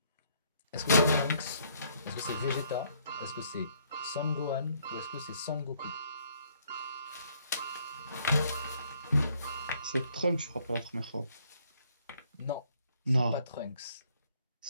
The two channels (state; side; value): inverted; both; correlation -0.66